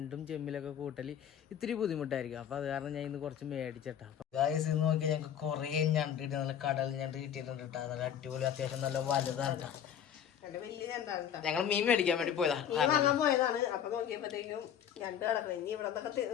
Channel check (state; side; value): quieter; right; 9.3 dB